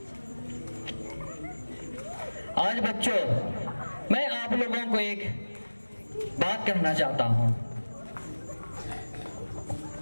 आज बच्चों मैं आप लोगों को एक बात कहना चाहता हूँ।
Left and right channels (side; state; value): both; inverted; correlation -1.00